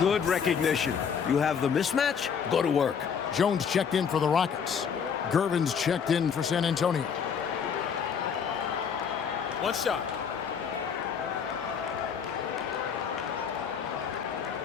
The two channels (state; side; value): quieter; right; 6.9 dB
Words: recognition. You have the mismatch, go to work. Jones checked in for the Rockets. Gervin's checked in for San Antonio. One shot.